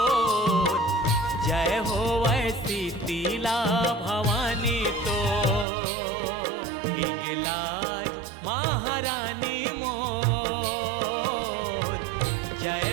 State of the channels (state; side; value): drops out; left; at 5.7 s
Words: जय हो वैसी शीतला भवानी तो। हिंगलाज महारानी मोर, जय